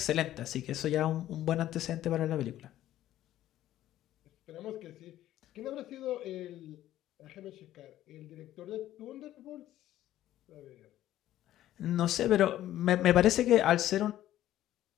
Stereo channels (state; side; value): quieter; right; 12.9 dB